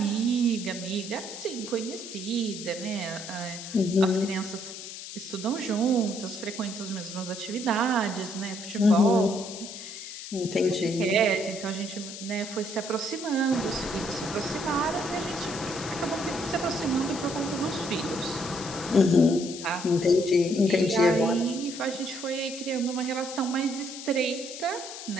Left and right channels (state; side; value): noise; left; hiss, 10 dB below the sound